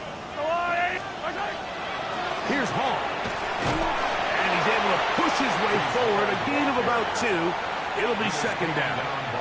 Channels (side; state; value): both; identical; correlation 1.00